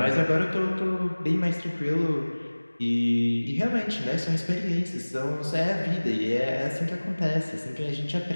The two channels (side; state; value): both; inverted; correlation -1.00